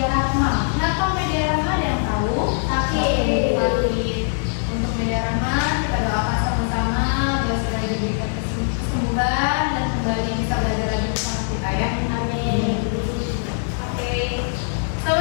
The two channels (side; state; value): right; silent; 64 dB below the other